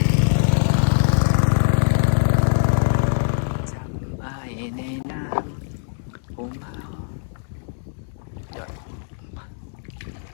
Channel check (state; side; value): silent; right; digital silence